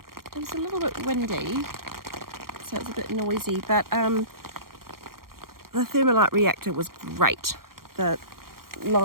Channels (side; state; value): left; late; 0.93 ms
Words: It was a little bit windy, so it was a bit noisy, but the thermalite reactor was great. The